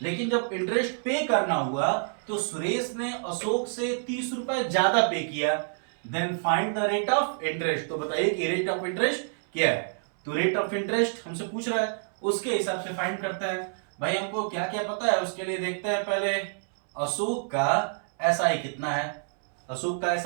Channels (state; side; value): silent; left; 60 dB below the other